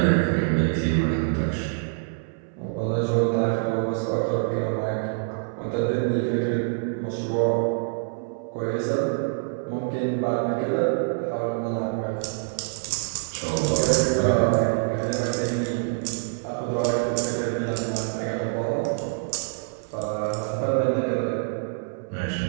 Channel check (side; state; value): left; silent; 61 dB below the other